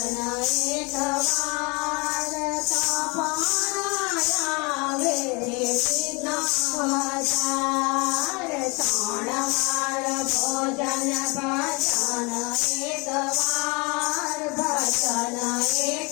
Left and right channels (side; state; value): right; quieter; 28.7 dB